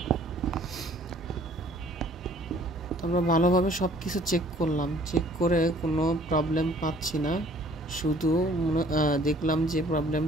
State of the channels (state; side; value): normal; both; correlation 0.56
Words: তো আমরা ভালোভাবে সব কিছু চেক করলাম, চেক করে কোনো প্রবলেম পাচ্ছি না। শুধু দেখলাম যে